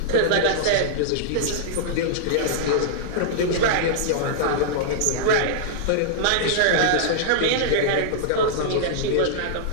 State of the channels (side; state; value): both; different; correlation -0.02